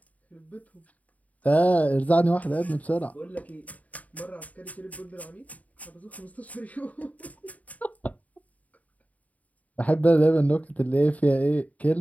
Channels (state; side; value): late; right; 0.071 ms